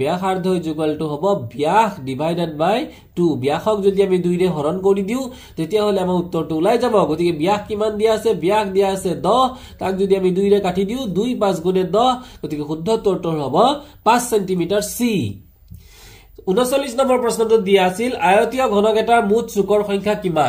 ব্যাসাৰ্ধ = হ'ব ব্যাস ডিভাইডেড বাই 2 ব্যাসক যদি আমি 2 ৰে হৰণ কৰি দিও তেতিয়া হলে আমাৰ উত্তৰটো ওলাই যাব গতিকে ব্যাস কিমান দিয়া আছে ব্যাস দিয়া আছে 10 তাক যদি আমি 2 ৰে কাটি দিও 2 5 গুণে 10 গতিকে শুদ্ধ উত্তৰটো হ'ব 5 সেন্টিমিটাৰ সি 39 নম্বৰ প্ৰশ্নটো দিয়া আছিল আয়তীয় ঘনক এটাৰ মুঠ চুকৰ সংখ্যা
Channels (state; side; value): identical; both; correlation 1.00